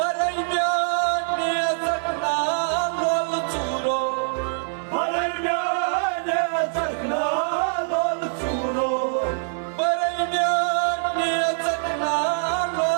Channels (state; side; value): silent; left; digital silence